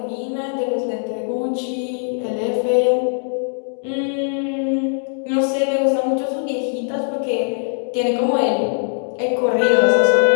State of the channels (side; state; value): right; silent; 66 dB below the other